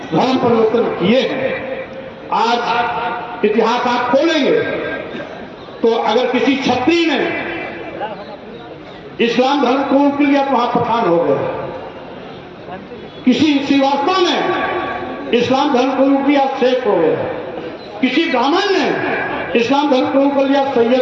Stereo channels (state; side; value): identical; both; correlation 1.00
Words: धर्म परिवर्तन किए हैं। आज इतिहास आप खोलेंगे तो अगर किसी क्षत्रिय ने इस्लाम धर्म कबूल कर लिया तो वहां पठान हो गए। किसी श्रीवास्तव ने इस्लाम धर्म कबूल किया, शेख हो गया। किसी ब्राह्मण ने इस्लाम धर्म कबूल कर लिया,